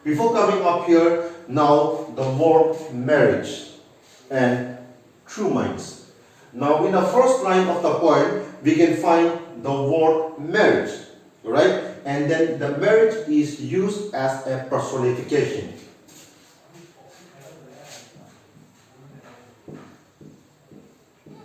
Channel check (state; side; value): identical; both; correlation 1.00